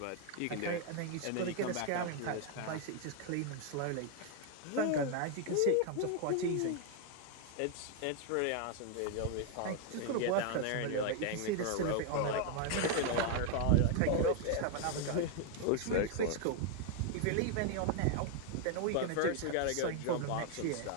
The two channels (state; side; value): different; both; correlation 0.00